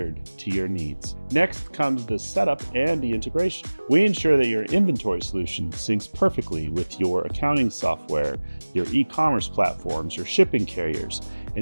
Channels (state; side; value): inverted; both; correlation -1.00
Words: to your needs. Next comes the setup and the integration. We ensure that your inventory solution syncs perfectly with your accounting software, your e-commerce platforms, your shipping carriers,